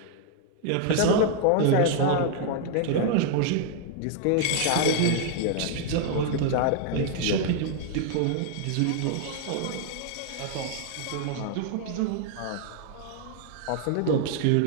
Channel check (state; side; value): different; both; correlation 0.00